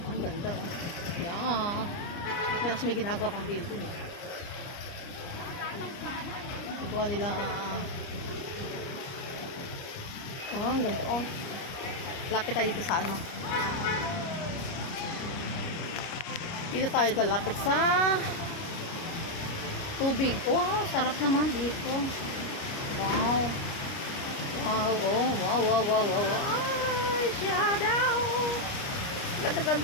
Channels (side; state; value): right; late; 29 ms